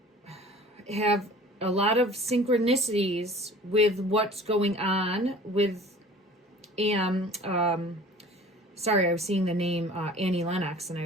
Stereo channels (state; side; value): normal; both; correlation 0.46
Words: have a lot of synchronicities with what's going on with sorry, I was seeing the name Annie Lennox, and